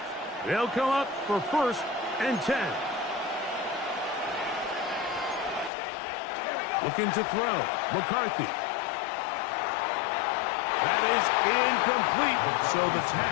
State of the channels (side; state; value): right; drops out; at 5.7 s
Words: They'll come up for 1st and 10. Looking to throw. McCarthy. That is incomplete. So the